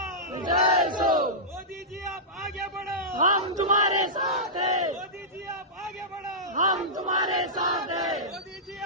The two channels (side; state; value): both; normal; correlation -0.15